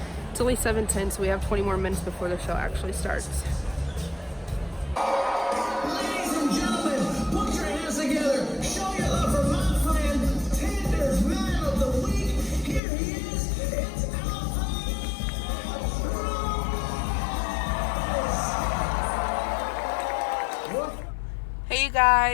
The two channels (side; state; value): right; drops out; at 12.8 s